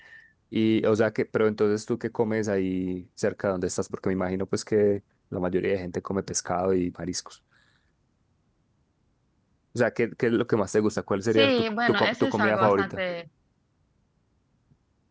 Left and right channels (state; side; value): identical; both; correlation 1.00